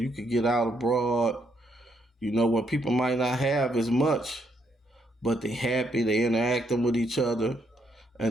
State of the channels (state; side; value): normal; both; correlation 0.74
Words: could get out abroad, when people might not have as much, but they happy, they interacting with each other,